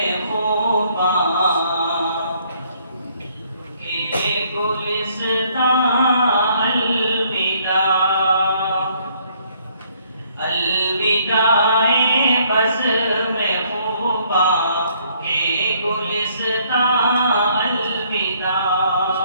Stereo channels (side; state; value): both; inverted; correlation -0.65